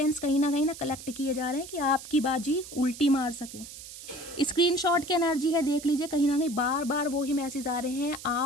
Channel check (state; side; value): noise; right; hiss, 14 dB below the sound